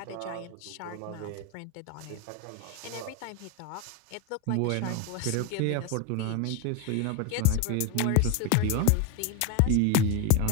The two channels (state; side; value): different; both; correlation 0.02